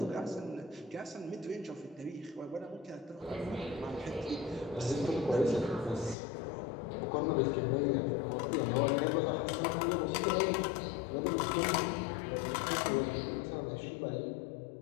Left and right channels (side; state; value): right; drops out; at 6.2 s